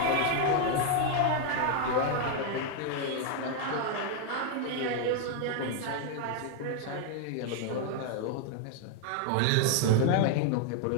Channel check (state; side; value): different; both; correlation 0.00